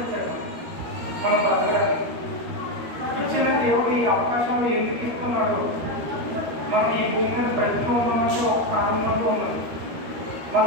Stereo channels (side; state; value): left; late; 13 ms